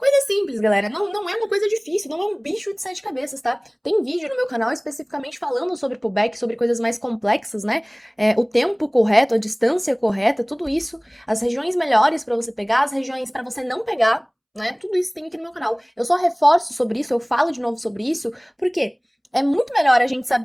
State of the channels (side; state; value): both; identical; correlation 1.00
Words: simples, galera, não é uma coisa difícil, não é um bicho de sete cabeças, tá? Tem vídeo no meu canal especificamente falando sobre pullback, sobre coisas mais complexas, né? O tempo correto, a distância correta, tudo isso, as regiões melhores pra você pegar, as regiões pra você não pegar, né? Tudo isso tem aqui no meu canal. Eu só reforço sobre isso, eu falo de novo sobre isso, porque é muito melhor a gente